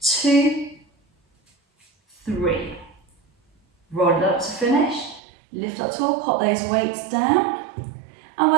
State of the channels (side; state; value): left; drops out; at 5.2 s